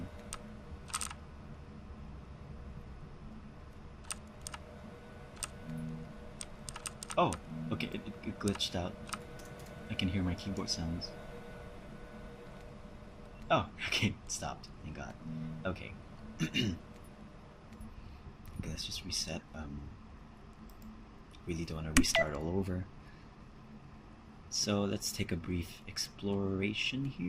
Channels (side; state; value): both; identical; correlation 1.00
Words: Oh, okay, it glitched out. I can hear my keyboard sounds. Oh, okay, it stopped. Thank God. Okay. Okay, let's just reset. Really don't want to restart all over. So let's take a brief exploration